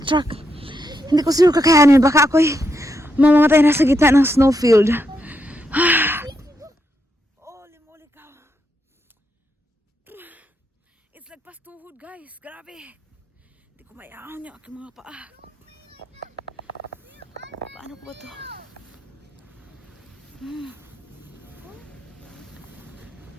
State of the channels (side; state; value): both; normal; correlation 0.81